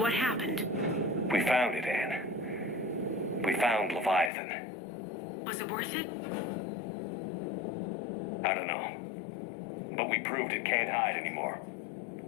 happened? We found it, Anne. We found Leviathan. Was it worth it? I don't know. But we proved it can't hide anymore.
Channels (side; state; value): right; drops out; at 4.3 s